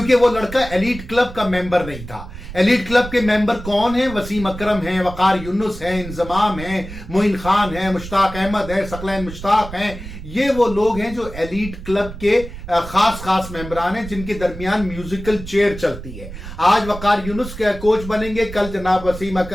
वो लड़का एलीट क्लब का मेंबर नहीं था। एलीट क्लब के मेंबर कौन है? वसीम अकरम है, वकार यूनुस है, इंजमाम है, मोइन खान है, मुश्ताक अहमद है, सकलैन मुश्ताक हैं। ये वो लोग हैं जो एलीट क्लब के खास मेंबरान हैं, जिनके दरमियान म्यूजिकल चेयर चलती है। आज वकार यूनुस के कोच बनेंगे, कल जनाब वसीम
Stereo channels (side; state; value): right; noise; rumble, 12 dB below the sound